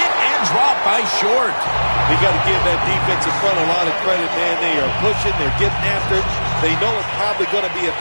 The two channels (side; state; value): both; inverted; correlation -1.00